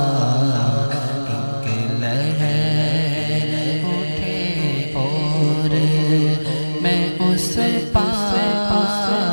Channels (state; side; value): inverted; both; correlation -1.00